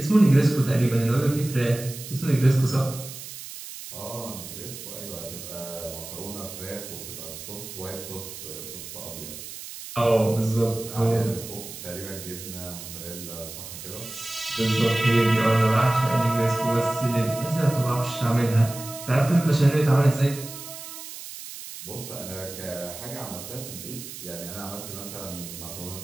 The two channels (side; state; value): right; noise; hiss, 12 dB below the sound